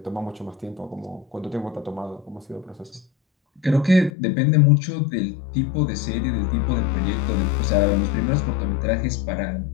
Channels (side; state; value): right; drops out; at 4.1 s